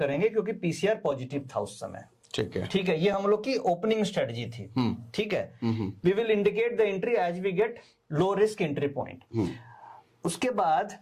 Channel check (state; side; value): identical; both; correlation 1.00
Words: क्योंकि पीसीआर पॉजिटिव था उस समय। ठीक है, ये हम लोग की ओपनिंग स्ट्रेटजी थी। ठीक है, we will indicate the entry as we get low risk entry point. उसके बाद